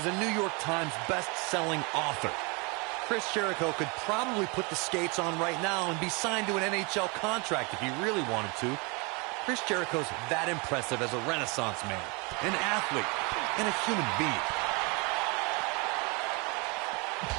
a New York Times best-selling author. Chris Jericho could probably put the skates on right now and be signed to an NHL contract if he really wanted to. Chris Jericho's that impressive as a Renaissance man, an athlete, and a human being.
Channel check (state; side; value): quieter; left; 29.9 dB